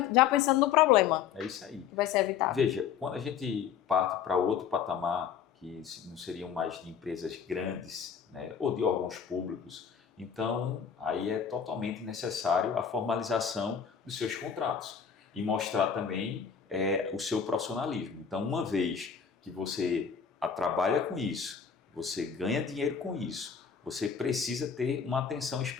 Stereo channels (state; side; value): quieter; right; 7.4 dB